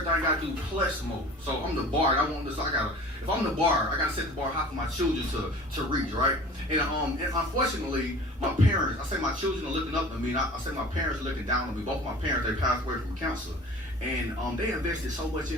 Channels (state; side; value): normal; both; correlation 0.43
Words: I gotta do plus more. So I'm the bar. I want this. If I'm the bar, I gotta set the bar high for my children to reach, right? And unfortunately, my parents, I say my children are looking up to me. And I say my parents are looking down on me. Both my parents, they passed away from cancer. And they invested so much